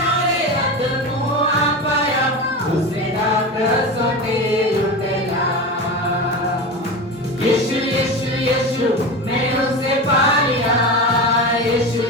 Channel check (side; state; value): both; normal; correlation 0.25